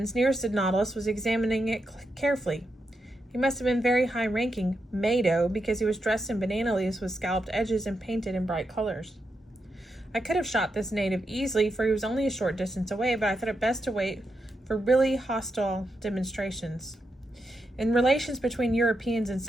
nearest the Nautilus was examining it carefully. He must have been very high-ranking Mado, because he was dressed in banana leaves with scalloped edges and painted in bright colors. I could have shot this native easily, for he was only a short distance away, but I thought it best to wait for really hostile demonstrations. In relations between Europeans and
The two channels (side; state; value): both; normal; correlation 0.85